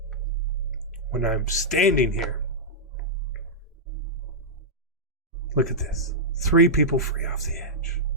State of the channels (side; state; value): both; normal; correlation -0.08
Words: When I'm standing here, look at this. 3 people free off the edge.